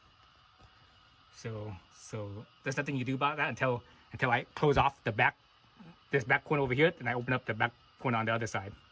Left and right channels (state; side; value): identical; both; correlation 1.00